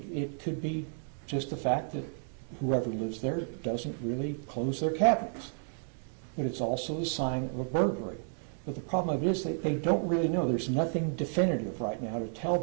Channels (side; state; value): left; silent; digital silence